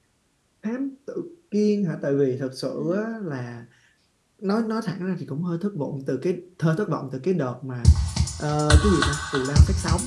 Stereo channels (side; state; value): both; identical; correlation 1.00